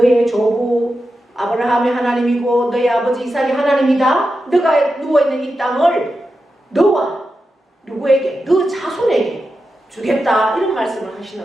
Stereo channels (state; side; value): normal; both; correlation 0.90